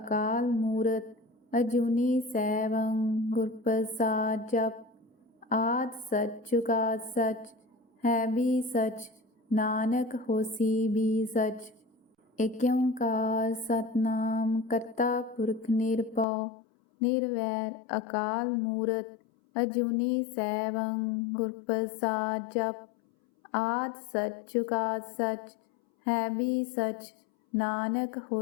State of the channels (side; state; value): right; drops out; at 16.2 s